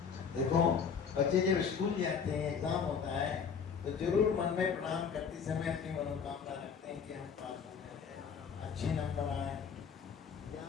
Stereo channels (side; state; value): right; quieter; 6.4 dB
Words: देखो बच्चे जब स्कूल जाते हैं, एग्जाम होता है, तो जरूर मन में प्रणाम करते समय अपनी मनोकामना रखते हैं कि हम पास हो जाए, अच्छे नंबर आए,